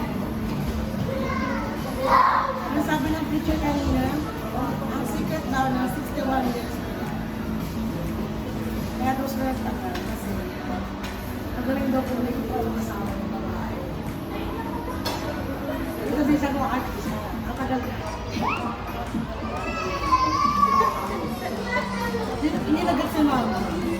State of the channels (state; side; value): identical; both; correlation 1.00